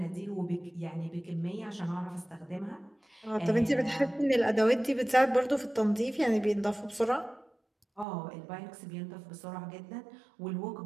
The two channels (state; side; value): drops out; left; at 8.1 s